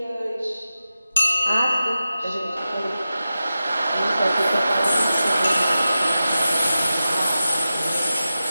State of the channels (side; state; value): both; inverted; correlation -0.92